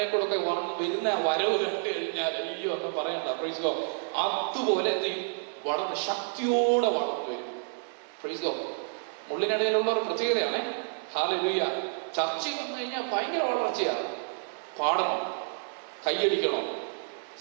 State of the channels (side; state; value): left; silent; 58 dB below the other